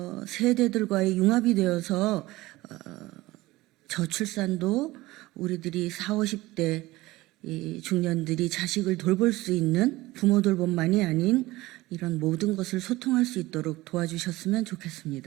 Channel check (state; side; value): quieter; left; 19.0 dB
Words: 세대들과의 융합이 되어서 저출산도 우리들이 40, 50대 중년들이 자식을 돌볼 수 있는 부모 돌봄만이 아닌 이런 모든 것을 소통할 수 있도록 도와주셨으면